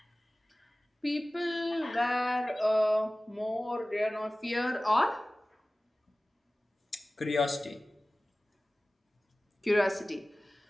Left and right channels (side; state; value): both; normal; correlation 0.98